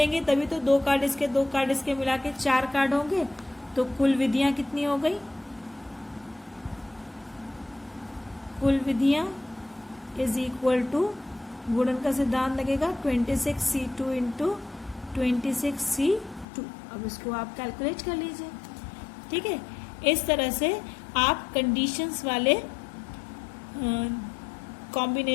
तभी तो 2 कार्ड इसके 2 कार्ड इसके मिला के 4 कार्ड होंगे। तो कुल विधियां कितनी हो गई, कुल विधियां इज इक्वल टू गुणन का सिद्धांत लगेगा 26C2 इंटू 26C2। अब इसको आप कैलकुलेट कर लीजिए। ठीक है, इस तरह से आप कंडीशंस वाले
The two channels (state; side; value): drops out; right; at 16.4 s